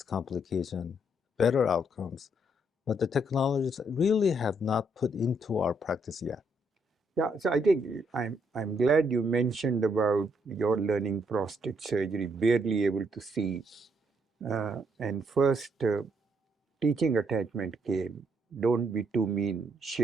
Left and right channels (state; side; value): normal; both; correlation 0.73